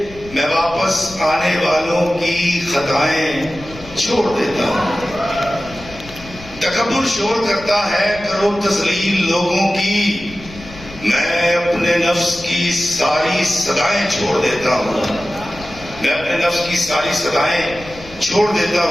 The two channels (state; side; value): noise; left; rumble, 17 dB below the sound